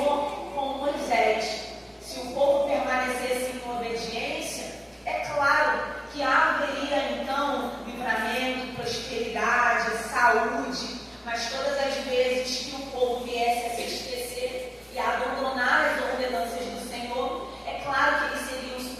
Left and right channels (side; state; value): both; identical; correlation 1.00